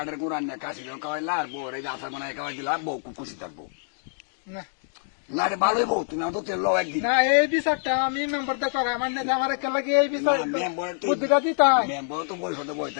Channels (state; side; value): silent; right; digital silence